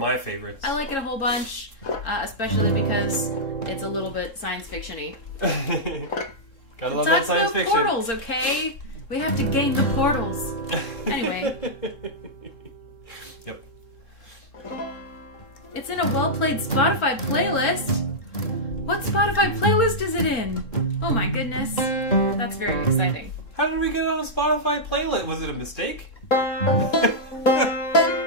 favorites. I like it a whole bunch, especially because it's a little bit science fiction-y. Gotta love It that talks science about fiction. portals, okay? We have to gain the portals. Anyway. Yep. It's in a well-played Spotify playlist. What Spotify playlist is it in? Oh my goodness. That's very exciting. How did we get on a Spotify playlist? Was it a mistake?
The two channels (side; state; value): right; late; 3.7 ms